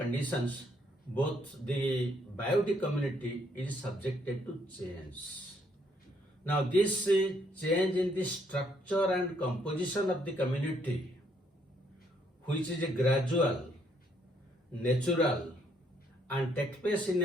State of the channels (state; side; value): normal; both; correlation 0.70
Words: both the biotic community is subjected to change. Now this change in the structure and composition of the community, which is a gradual, natural and takes place in